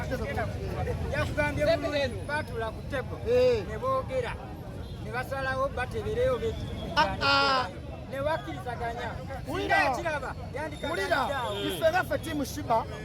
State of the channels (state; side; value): identical; both; correlation 1.00